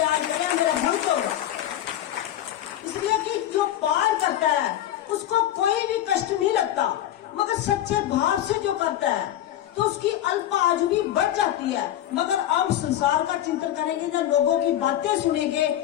करेगा, मेरा भक्त होगा। इसलिए कि जो पार करता है उसको कोई भी कष्ट नहीं लगता, मगर सच्चे भाव से जो करता है तो उसकी अल्प आयु भी बढ़ जाती है। मगर अब संसार का चिंतन करेंगे या लोगों की बातें सुनेंगे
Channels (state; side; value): quieter; right; 12.3 dB